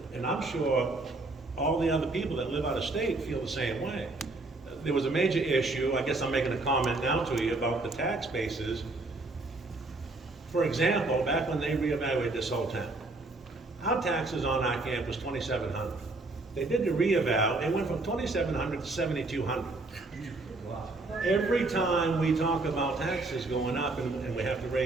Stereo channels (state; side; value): quieter; left; 3.1 dB